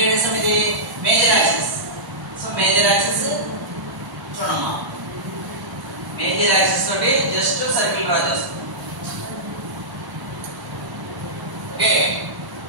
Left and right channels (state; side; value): late; left; 1.0 ms